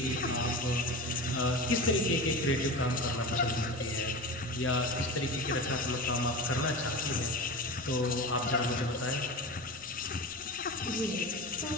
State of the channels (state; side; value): noise; right; rumble, 25 dB below the sound